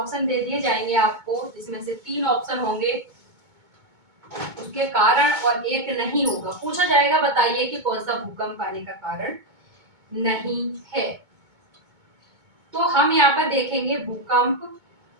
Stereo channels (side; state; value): left; late; 2.2 ms